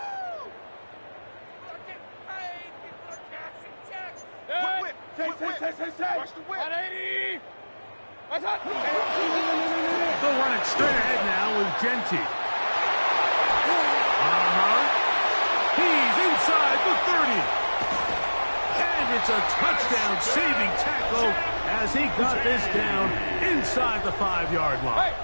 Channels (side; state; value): both; inverted; correlation -1.00